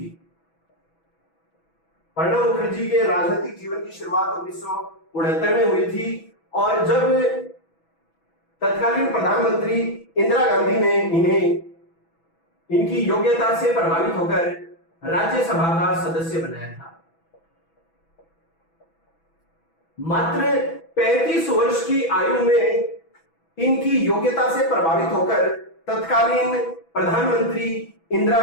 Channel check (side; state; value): right; late; 6.1 ms